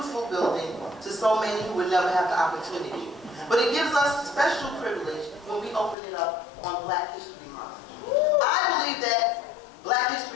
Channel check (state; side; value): drops out; right; at 6.0 s